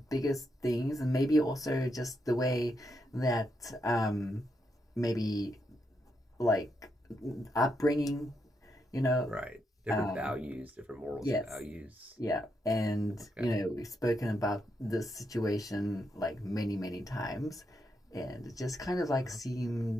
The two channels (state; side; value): normal; both; correlation 0.81